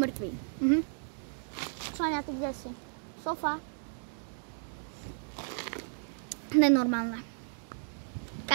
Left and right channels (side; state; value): left; silent; digital silence